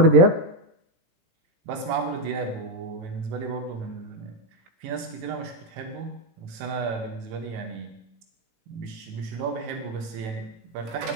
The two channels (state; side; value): late; left; 18 ms